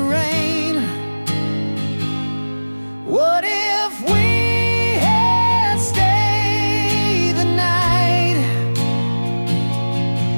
What if we had stayed the night?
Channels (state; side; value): inverted; both; correlation -1.00